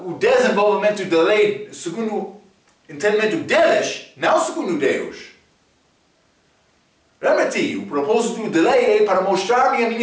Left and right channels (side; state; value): both; identical; correlation 1.00